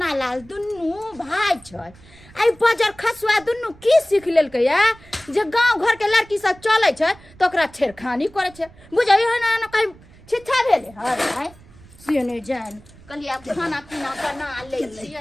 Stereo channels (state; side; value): noise; right; rumble, 24 dB below the sound